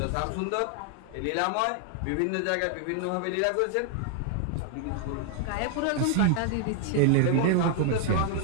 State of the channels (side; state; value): both; different; correlation 0.00